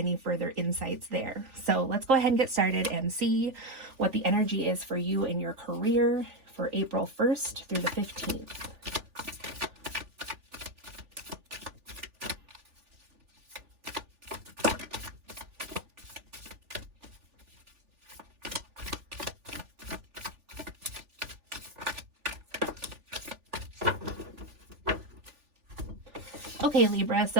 further insights there. So let's go ahead and get started and see what the energy is for you in your career for April 1st through the 15th. Okay, Libra,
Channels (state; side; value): late; left; 3.4 ms